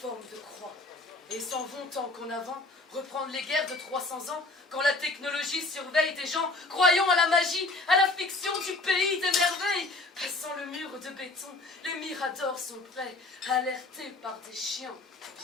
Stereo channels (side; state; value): right; quieter; 3.2 dB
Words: de croix et s'en vont tant qu'en avant reprendre les guerres de 300 ans quand la technologie surveille des gens croyant à la magie, à la fiction du pays des merveilles. Passant le mur de béton, les miradors sont prêts, alertés par des chiens,